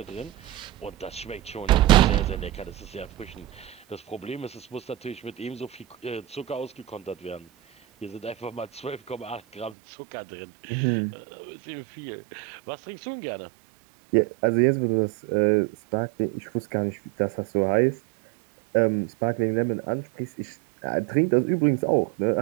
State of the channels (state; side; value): drops out; left; at 9.7 s